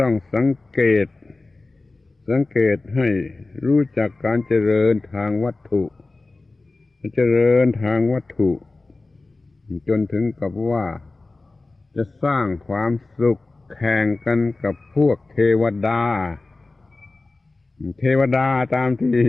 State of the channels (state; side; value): quieter; right; 3.3 dB